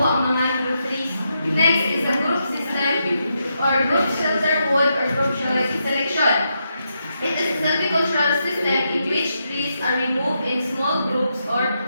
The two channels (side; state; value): both; inverted; correlation -0.82